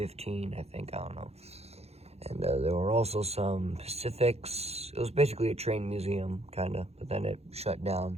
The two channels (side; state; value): left; late; 0.30 ms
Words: I don't know. And there were also some Pacifics. It was basically a train museum, kind of, but then it shut down.